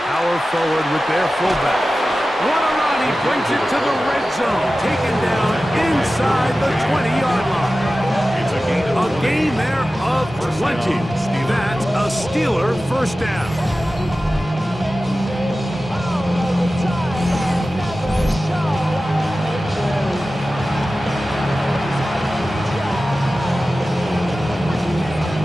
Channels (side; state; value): both; normal; correlation 0.95